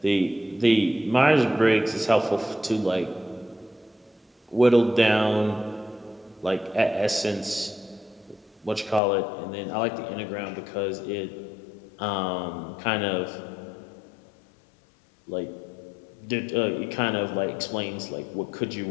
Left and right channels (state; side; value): drops out; right; at 9.0 s